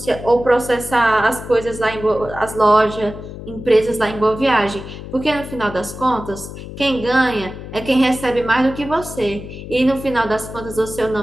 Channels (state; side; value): noise; left; hum, 11 dB below the sound